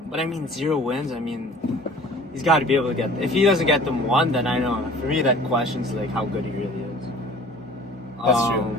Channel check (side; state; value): both; normal; correlation 0.47